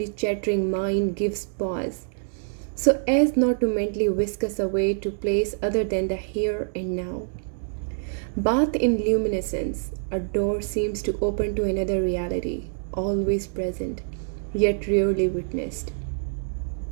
chattering mind gives pause, so as not to mentally whisk us away to place other than the here and now. Bathed in luminescence, a door seems to open to another reality, always present, yet rarely witnessed.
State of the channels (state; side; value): silent; left; digital silence